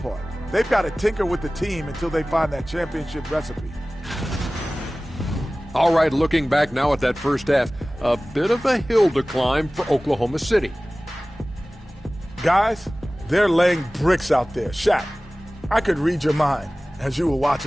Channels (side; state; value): both; normal; correlation 0.98